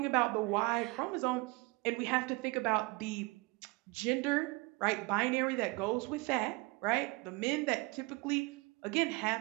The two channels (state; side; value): quieter; left; 25.4 dB